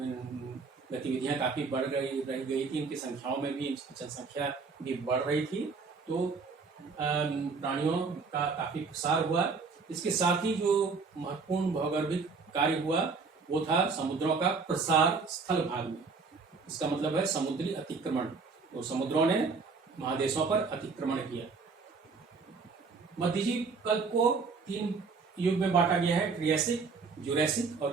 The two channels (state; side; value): quieter; left; 4.7 dB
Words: गतिविधियां काफी बढ़ गई थी, इनकी संख्याओं में भी, जनसंख्या भी बढ़ रही थी। तो प्राणियों का काफी प्रसार हुआ। इसके साथ ही जो महत्वपूर्ण भौगोलिक कार्य हुआ वो था समुद्रों का प्रसार स्थल भाग में। इसका मतलब है समुद्री अतिक्रमण। तो समुद्रों ने महादेशों पर अतिक्रमण किया। मध्यजीव कल्प को 3 युग में बांटा गया है, ट्रियासिक, जुरैसिक और